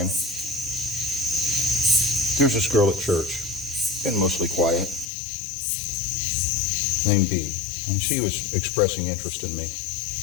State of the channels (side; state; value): right; drops out; at 5.1 s